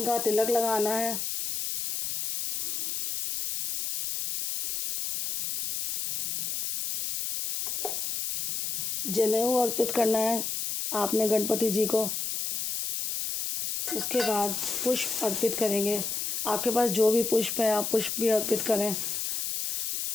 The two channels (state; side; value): noise; left; hiss, 2 dB below the sound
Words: का तिलक लगाना है। जनेऊ अर्पित करना है आपने गणपति जी को। उसके बाद पुष्प अर्पित करेंगे। आपके पास जो भी पुष्प है आप पुष्प भी अर्पित करें।